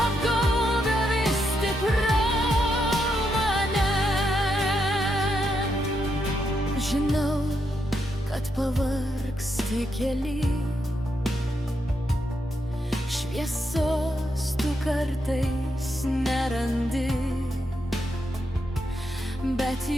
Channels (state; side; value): normal; both; correlation 0.81